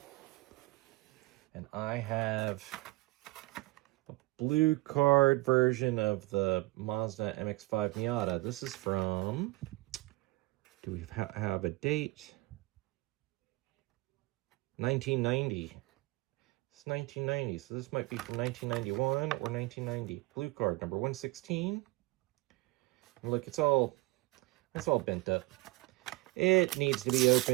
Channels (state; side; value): quieter; left; 21.5 dB